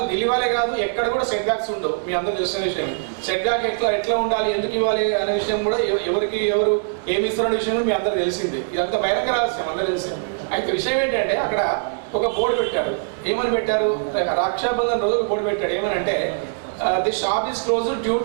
ఢిల్లీ వాళ్ళే కాదు ఎక్కడ కూడా సెట్ బ్యాక్స్ ఉండవు. మీ అందరూ తెలిసిన విషయం. సెట్ బ్యాక్ ఎట్లా ఉండాలి, ఎందుకు ఇవ్వాలి అనే విషయం కూడా ఎవరు ఏమి ఇస్తున్న విషయం కూడా మీ అందరూ తెలిసిందే. ఇదంతా బహిరంగ రహస్యం, అందరూ తెలిసింది. అయితే విషయం ఏంటంటే అక్కడ ఒక బోర్డు పెట్టారు. ఏమని పెట్టారు? రక్షాబంధన్ రోజు ఒక బోర్డు పెట్టాడు. ఏమని అంటే the shop is close due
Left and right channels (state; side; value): silent; left; digital silence